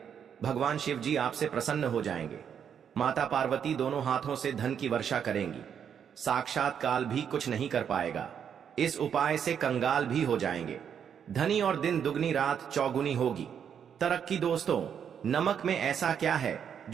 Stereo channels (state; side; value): quieter; left; 8.0 dB